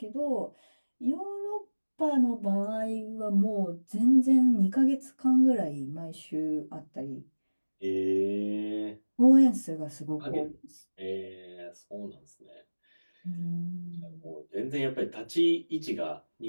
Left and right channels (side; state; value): both; inverted; correlation -1.00